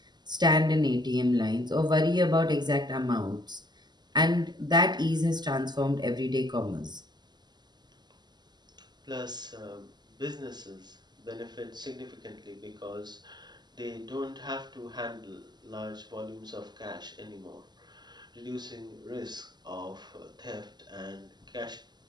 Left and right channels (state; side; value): late; left; 0.21 ms